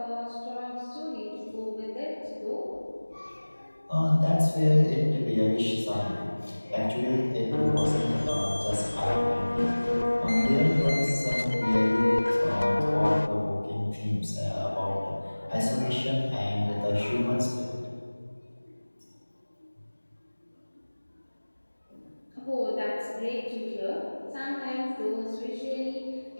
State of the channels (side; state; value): both; inverted; correlation -1.00